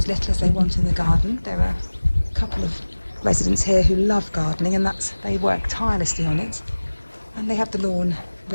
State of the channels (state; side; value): inverted; both; correlation -1.00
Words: little as they want in the garden. There are a couple of residents here who love gardening, and they work tirelessly on it. And they have the lawn